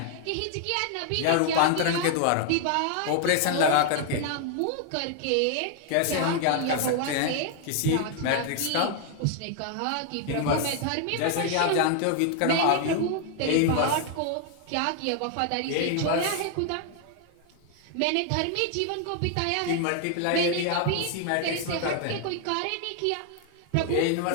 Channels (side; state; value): both; different; correlation 0.00